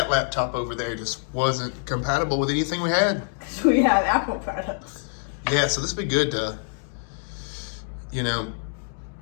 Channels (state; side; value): silent; right; 61 dB below the other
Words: laptop over there just wasn't compatible with anything we had. Because we have Apple products. Yeah, so this would be good to,